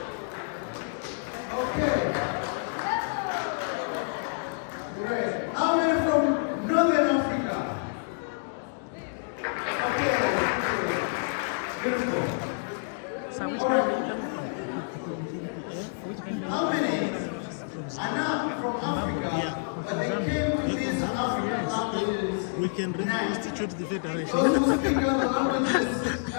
Okay. Great. How many from Northern Africa? Okay. Beautiful. How many are not from Africa, but they came to these African languages? We can reconstitute the federation. Those who speak other languages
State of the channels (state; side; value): silent; right; digital silence